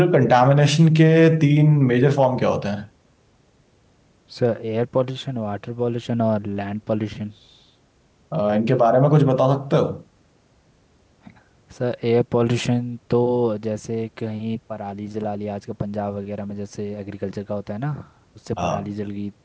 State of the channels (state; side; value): identical; both; correlation 1.00